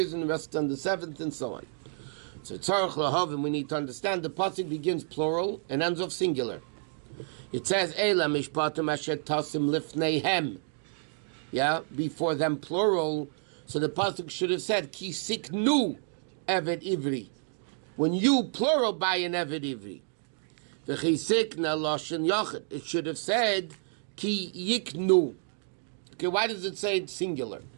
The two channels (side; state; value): left; silent; digital silence